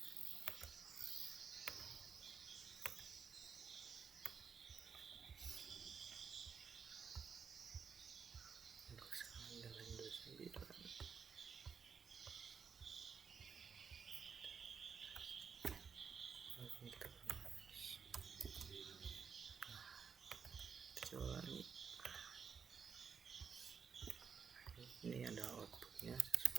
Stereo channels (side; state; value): left; quieter; 6.3 dB